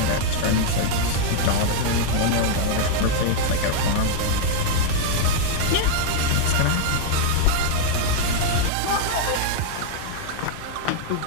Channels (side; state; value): both; different; correlation -0.01